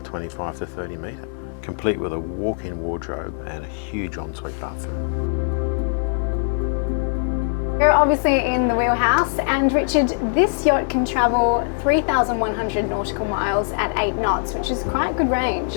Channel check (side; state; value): right; silent; digital silence